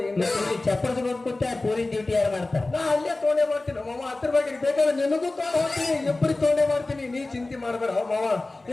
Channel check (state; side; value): quieter; right; 3.1 dB